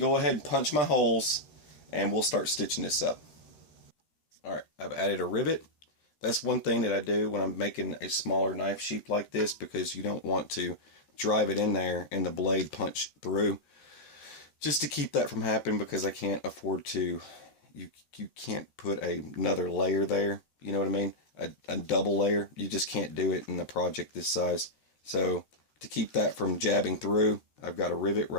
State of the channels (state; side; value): late; right; 13 ms